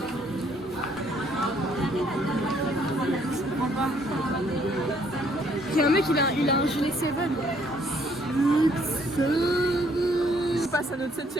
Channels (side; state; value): both; normal; correlation 0.66